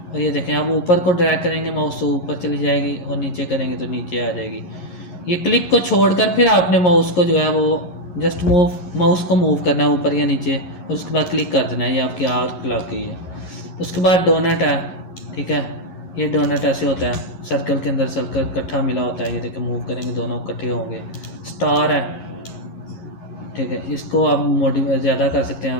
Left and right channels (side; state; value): right; late; 11 ms